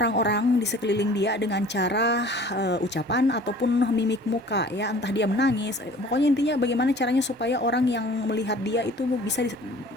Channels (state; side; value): normal; both; correlation 0.48